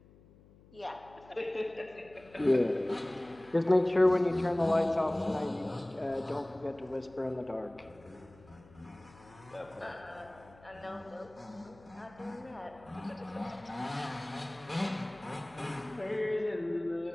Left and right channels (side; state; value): left; noise; hum, 24 dB below the sound